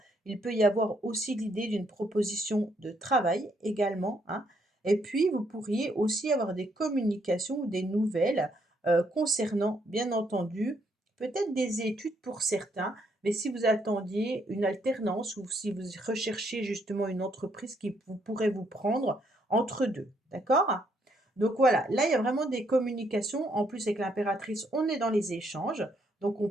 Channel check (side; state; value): both; normal; correlation 0.72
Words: Il peut y avoir aussi l'idée d'une proposition de travail également, hein. Et puis vous pourriez aussi avoir des communications ou des nouvelles, concernant bien entendu, peut-être des études pour certains, mais si vous attendiez une alternance ou si vous recherchiez justement une entreprise qui pourrait vous prendre entre 2, d'accord? Donc voilà, là, il y a vraiment des communications. En plus, avec l'impératrice, on est dans les échanges, donc on